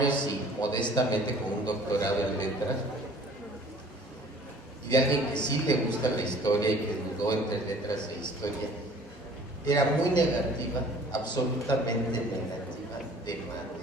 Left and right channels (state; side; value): normal; both; correlation 0.51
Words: y modestamente con un doctorado en letras, y de alguien que sí le gusta la historia y que dudó entre letras e historia, era muy negativa, absolutamente negativa, de madre.